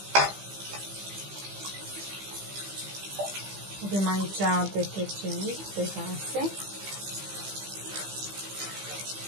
Avem aici detergent pe vase.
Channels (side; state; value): left; late; 15 ms